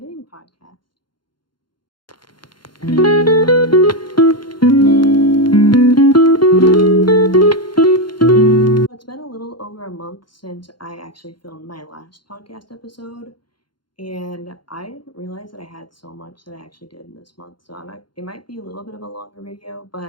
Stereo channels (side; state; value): right; late; 0.72 ms